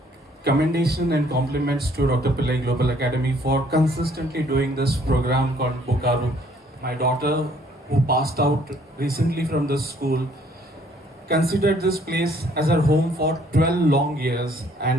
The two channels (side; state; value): both; normal; correlation 0.62